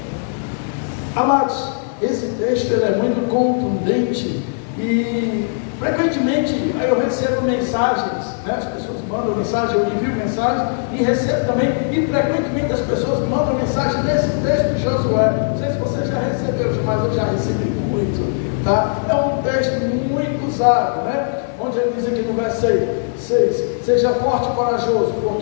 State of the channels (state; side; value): silent; right; digital silence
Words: Amados, esse texto ele é muito contundente e frequentemente eu recebo mensagens, né? As pessoas mandam mensagem, eu envio mensagem e recebo também, e frequentemente as pessoas mandam mensagem nesse texto de Josué. Não sei se você já recebeu, mas eu já recebi muito, tá? É um texto muito usado, né? Onde ele diz aqui no verso 6, seja forte e corajoso,